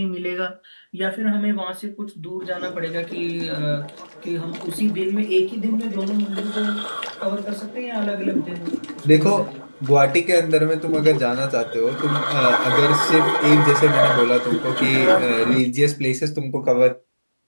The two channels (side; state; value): both; inverted; correlation -1.00